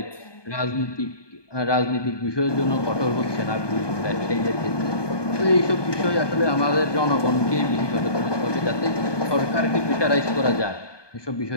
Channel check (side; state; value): right; late; 1.2 ms